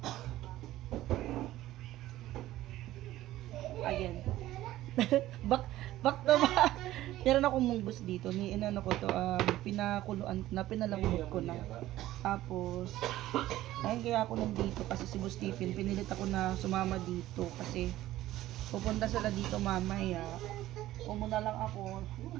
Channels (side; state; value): left; quieter; 15.0 dB